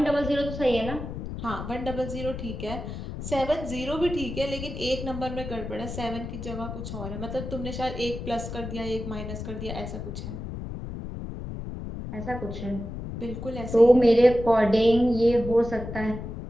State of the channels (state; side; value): noise; left; rumble, 8 dB below the sound